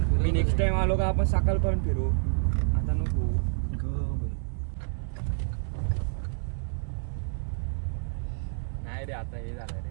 फिरवतो रे. नेक्स्ट टाइम आलो का आपण सकाळपर्यंत फिरू. आता नको. नाही रे आता हे झालं रे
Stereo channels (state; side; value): silent; left; digital silence